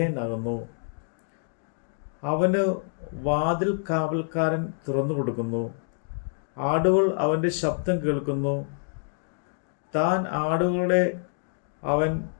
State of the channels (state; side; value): silent; right; digital silence